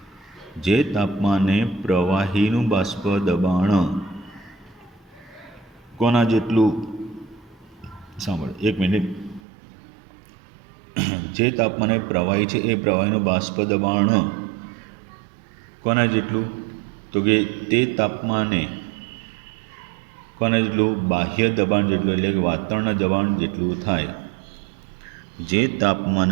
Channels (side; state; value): left; drops out; at 9.4 s